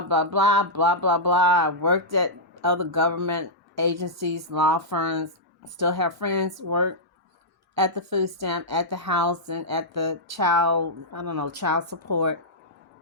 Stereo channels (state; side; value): normal; both; correlation -0.10